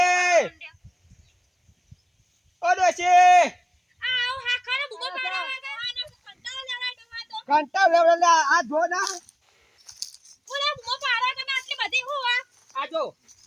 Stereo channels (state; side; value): identical; both; correlation 1.00